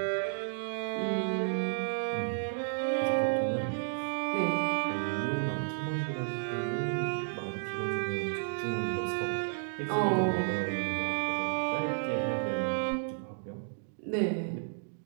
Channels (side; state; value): left; silent; digital silence